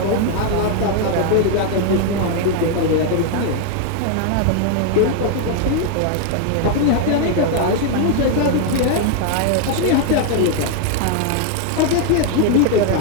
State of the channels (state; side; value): different; both; correlation 0.00